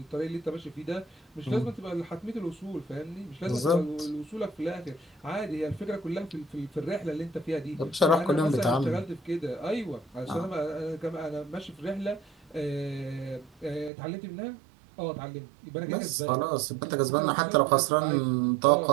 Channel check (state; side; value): drops out; left; at 13.9 s